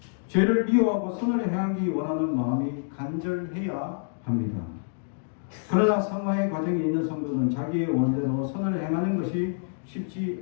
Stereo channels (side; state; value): right; silent; digital silence